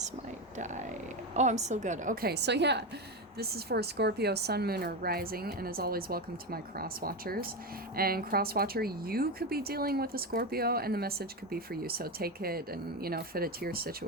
might die. Oh, I'm still good. Okay, so yeah, this is for Scorpio, Sun, Moon, or Rising, and as always, welcome to my cross watchers. And cross watcher, you could be dealing with a Scorpio, and the message could be for you. So, take it and, fit it to your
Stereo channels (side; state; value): both; normal; correlation 0.15